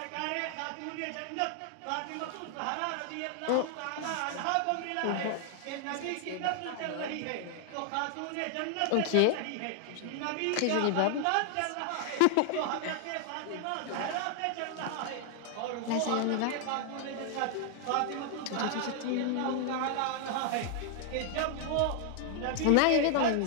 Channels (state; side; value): different; both; correlation 0.00